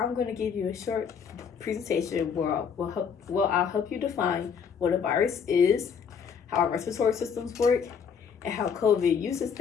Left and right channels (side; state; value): right; quieter; 6.8 dB